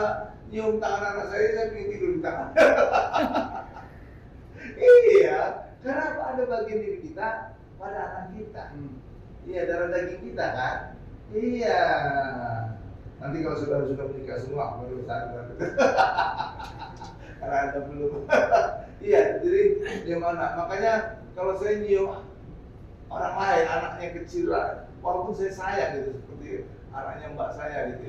nyium tangan anak saya ingin tidur di tangan. Iya, karena apa? Ada bagian diri kita pada anak kita. Iya, darah daging kita kan. Iya. Nanti kalau sudah menikah semua baru sadar. Karena Anda belum. Iya, jadi gimana? Makanya kalau saya nyium orang lain, anaknya kecil lah, walaupun saya sayang gitu seperti anaknya mbak saya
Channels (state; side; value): identical; both; correlation 1.00